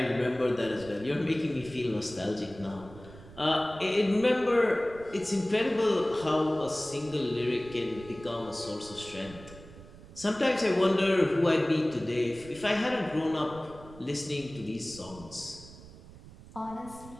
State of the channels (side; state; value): right; noise; rumble, 18 dB below the sound